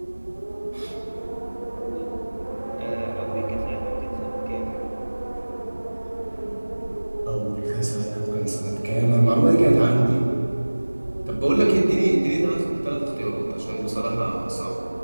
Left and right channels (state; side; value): inverted; both; correlation -1.00